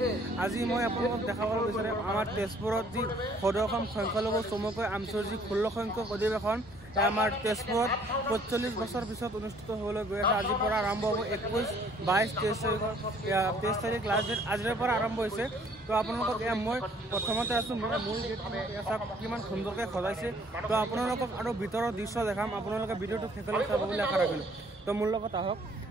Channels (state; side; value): normal; both; correlation 0.60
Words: আজি মই আপোনালোকক দেখাব বিচাৰিম আমাৰ তেজপুৰত যি সদৌ অসম সংখ্যালঘু চমুকৈ আমছৰ যি 16 সংখ্যক অধিৱেশন আমাৰ তেজপুৰত 45 বছৰ পিছত অনুষ্ঠিত হ'বলৈ গৈ আছে। আজিৰ পৰা আৰম্ভ হ'ব 21, 22, 23 তাৰিখ লাষ্ট ডেট আজিৰ পৰা আৰম্ভ হৈছে। তো আপোনালোকক মই প্ৰথমতে আছোঁ মূল গেটখন কিমান সুন্দৰকৈ সজাইছে। তো আপোনালোকক আৰু ভিতৰৰ দৃশ্য দেখাম, আপোনালোকে ভিডিঅ'টো শেষলৈ চাব বুলি আশা ৰাখিলোঁ। তো মোৰ লগত আহক।